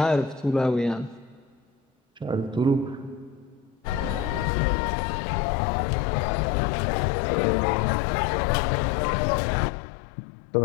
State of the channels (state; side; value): drops out; right; at 4.5 s